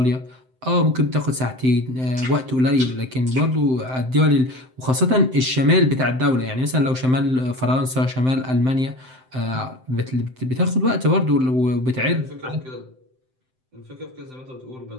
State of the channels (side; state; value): left; late; 7.8 ms